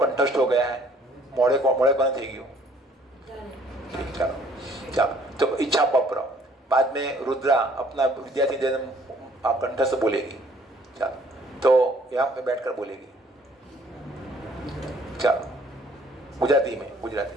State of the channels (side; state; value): both; normal; correlation 0.60